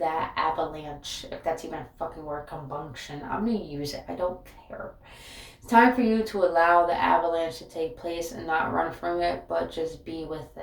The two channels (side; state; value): both; identical; correlation 1.00